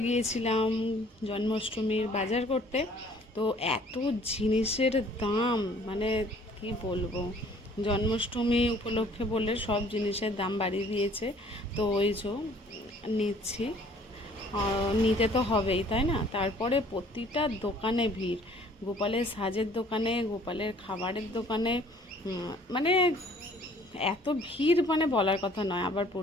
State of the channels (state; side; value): normal; both; correlation 0.56